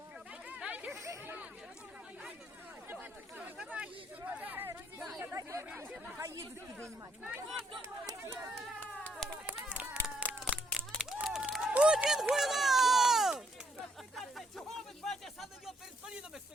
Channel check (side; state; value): both; normal; correlation 0.71